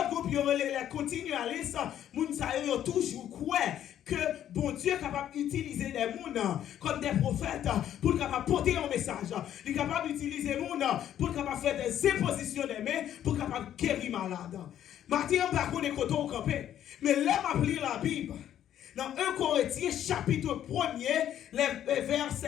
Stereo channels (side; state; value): right; quieter; 10.8 dB